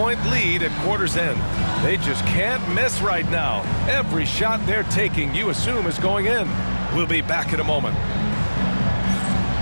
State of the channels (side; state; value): both; inverted; correlation -1.00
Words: lead at quarter's end. They just can't miss right now. Every shot they're taking, you assume, is going in. We'll be back in a moment.